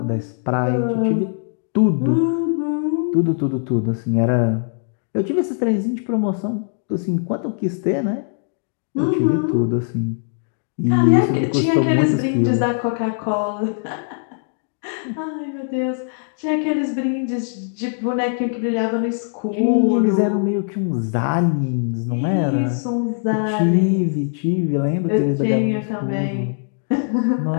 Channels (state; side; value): silent; right; 62 dB below the other